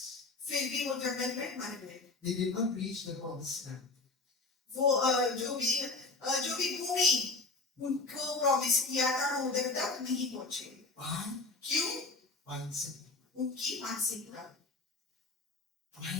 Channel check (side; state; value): right; quieter; 3.7 dB